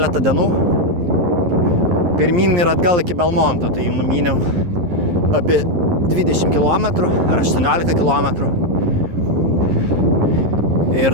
dienų. Pirmyn ir atgal iki Belmonto, tai numyniau apie 20 km ar 18 km. Ir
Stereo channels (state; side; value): late; left; 11 ms